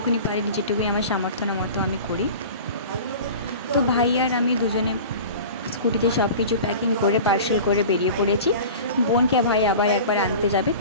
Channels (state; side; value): inverted; both; correlation -0.37